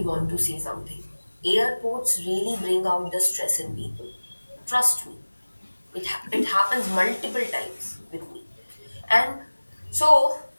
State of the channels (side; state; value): both; inverted; correlation -1.00